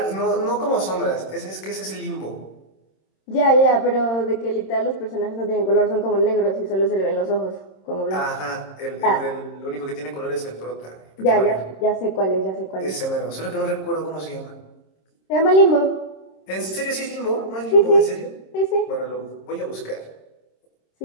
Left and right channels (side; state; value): right; late; 26 ms